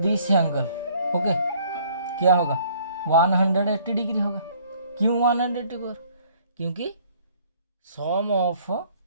angle, okay, क्या होगा 180 डिग्री होगा। क्यों 180 पर, क्योंकि sum of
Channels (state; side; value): inverted; both; correlation -0.59